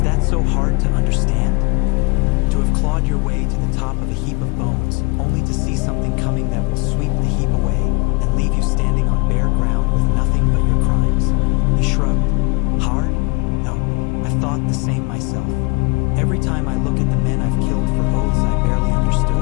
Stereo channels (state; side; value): quieter; right; 30.0 dB